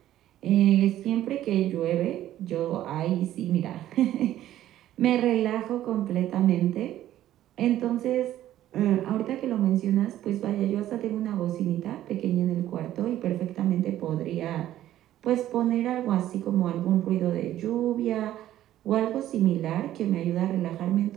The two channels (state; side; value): quieter; left; 13.0 dB